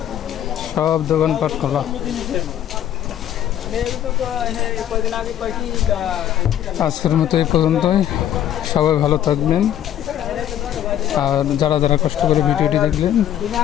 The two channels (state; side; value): quieter; right; 11.2 dB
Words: সব দোকানপাট খোলা। আজকের মতো এই পর্যন্তই, সবাই ভালো থাকবেন। আর যারা যারা কষ্ট করে ভিডিওটি দেখলেন